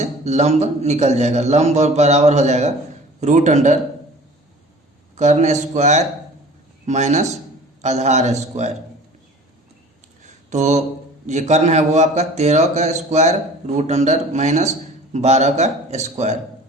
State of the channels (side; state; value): both; normal; correlation 0.44